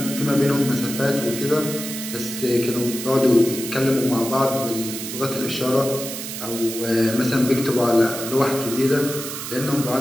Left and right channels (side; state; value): right; noise; hiss, 7 dB below the sound